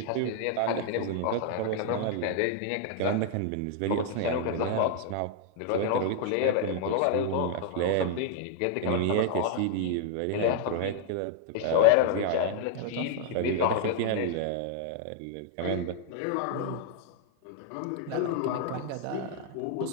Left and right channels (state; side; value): different; both; correlation -0.01